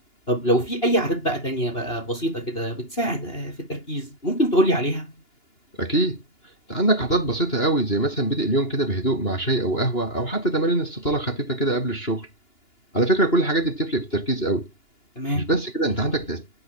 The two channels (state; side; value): late; right; 2.9 ms